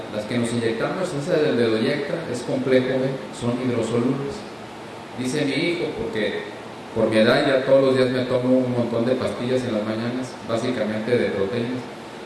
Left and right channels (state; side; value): identical; both; correlation 1.00